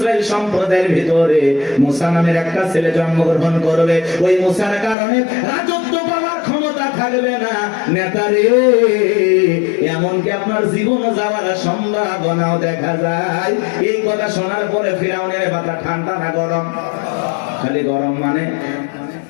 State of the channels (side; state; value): right; drops out; at 5.0 s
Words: সম্প্রদায়ের ভিতরে মুসা নামের একটা ছেলে জন্মগ্রহণ করবে। ওই মুসার কারণে রাজত্ব পাওয়ার ক্ষমতা থাকবে না। নেতারে, এমনকি আপনার জীবন যাওয়ার সম্ভাবনাও দেখা যায়। এই কথা শোনার পরে ফিরাউনের মাথা ঠান্ডা না গরম? খালি গরম। মানে